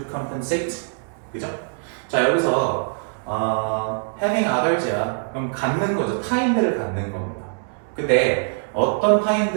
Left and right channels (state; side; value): silent; left; 64 dB below the other